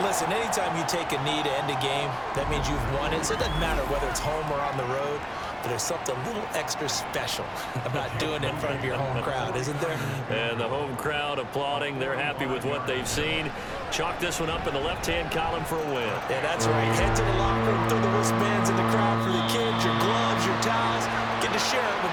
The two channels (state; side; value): identical; both; correlation 1.00